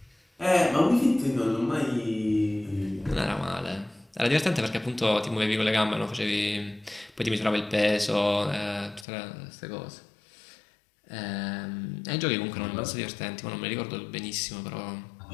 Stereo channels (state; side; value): drops out; right; at 9.1 s